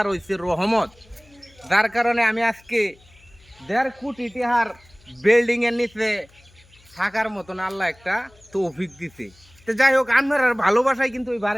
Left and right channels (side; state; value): left; noise; hum, 28 dB below the sound